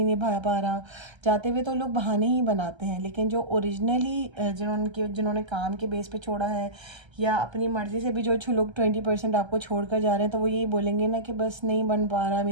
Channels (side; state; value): left; late; 1.3 ms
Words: निभा पा रहा. जाते हुए तो लोग बहाने ही बनाते हैं, लेकिन जो ओरिजिनली जिन्होंने काम के बेस पे छोड़ा है या अपनी मर्ज़ी से भी जो लोग 20% आपको छोड़ कर जा रहे हैं, तो वो यही बोलेंगे ना कि बस नहीं बन पा रहा,